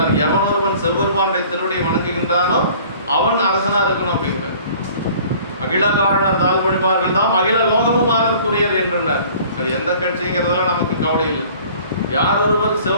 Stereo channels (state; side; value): inverted; both; correlation -0.50